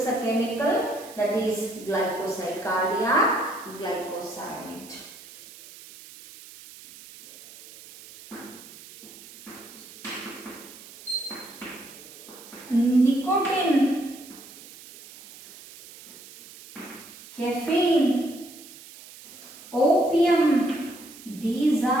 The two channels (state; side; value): noise; right; hiss, 18 dB below the sound